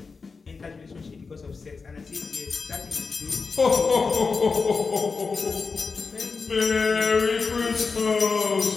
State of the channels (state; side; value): quieter; right; 4.7 dB